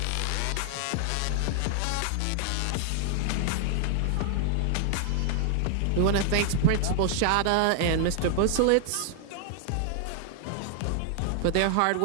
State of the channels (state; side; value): different; both; correlation 0.00